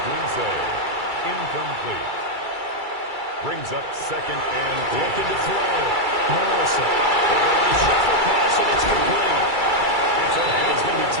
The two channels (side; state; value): left; late; 2.3 ms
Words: Incomplete. Brings up 2nd and 10. Looking to throw. Morrison. They're going to shuffle pass, and it's complete. And he's going to be